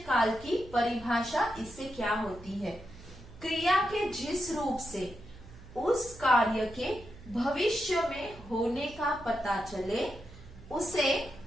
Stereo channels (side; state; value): right; noise; hum, 18 dB below the sound